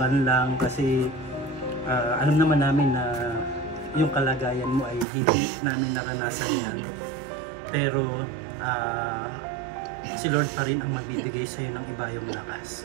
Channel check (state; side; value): drops out; left; at 5.1 s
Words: lang kasi alam naman namin na yung kalagayan mo ay hindi namin naranasan yan. Pero si Lord pa rin ang magbibigay sa iyo ng iba yung